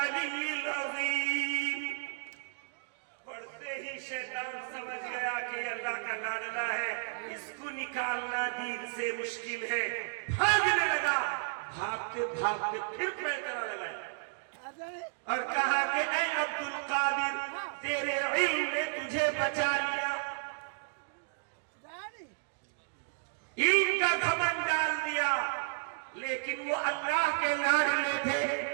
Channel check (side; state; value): left; silent; digital silence